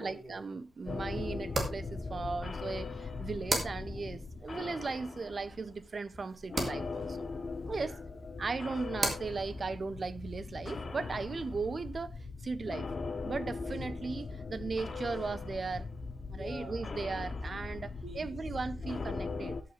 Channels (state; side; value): normal; both; correlation 0.89